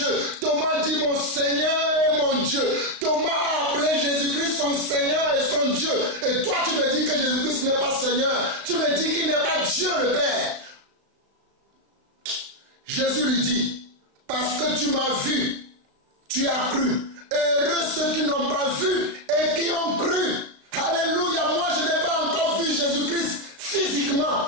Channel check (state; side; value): late; left; 35 ms